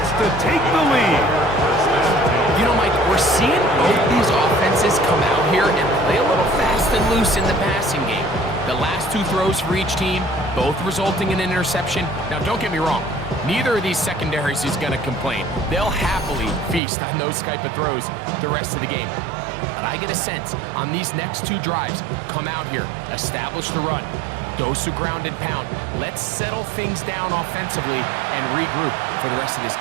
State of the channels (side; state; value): left; drops out; at 16.8 s